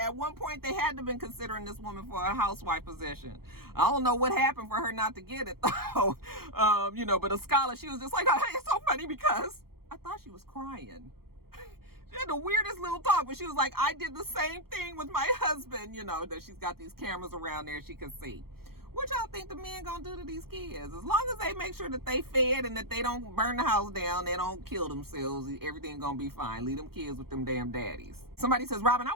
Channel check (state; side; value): late; left; 0.94 ms